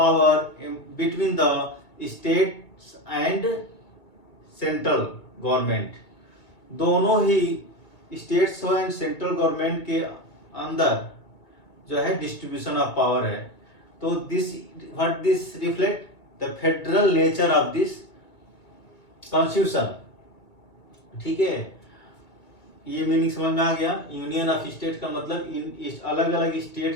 between the states and central government. दोनों ही states and central government के अंदर जो है distribution of power है। तो this what this reflect the federal nature of this constitution, ठीक है। ये मीनिंग समझ में आ गया। यूनियन ऑफ स्टेट का मतलब इन अलग अलग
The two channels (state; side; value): late; right; 2.4 ms